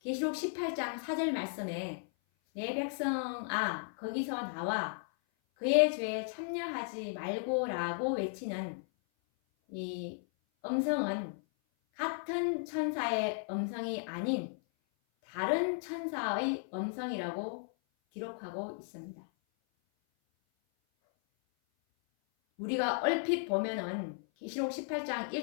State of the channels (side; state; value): right; silent; 54 dB below the other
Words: 18장 4절 말씀에 내 백성아 거기서 나와 그의 죄에 참여하지 말고 라고 외치는 이 음성은 같은 천사의 음성이 아닌 다른 천사의 음성이라고 기록하고 있습니다. 우리가 얼핏 보면은 계시록 18장